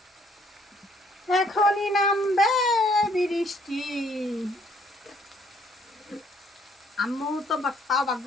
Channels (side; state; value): both; normal; correlation 0.64